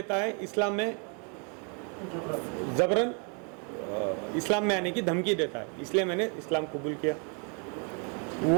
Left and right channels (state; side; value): quieter; left; 37.4 dB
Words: है, इस्लाम में जबरन इस्लाम में आने की धमकी देता है, इसलिए मैंने इस्लाम कबूल किया।